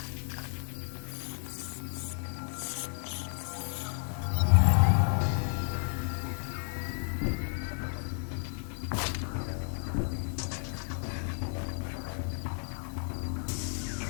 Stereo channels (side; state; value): right; silent; 56 dB below the other